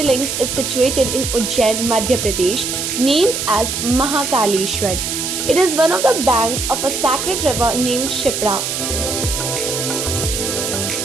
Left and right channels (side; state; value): right; noise; hiss, 3 dB below the sound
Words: is situated in Ujjain, Madhya Pradesh, named as Mahakaleshwar. It is one of the banks of a sacred river named Shipra.